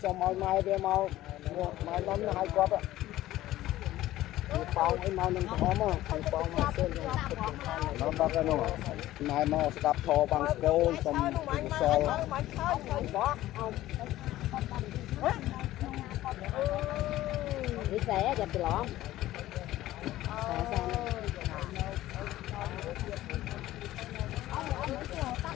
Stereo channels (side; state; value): right; quieter; 15.2 dB